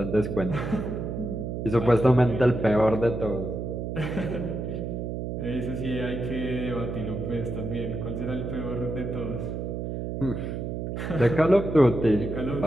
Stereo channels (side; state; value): right; noise; hum, 4 dB below the sound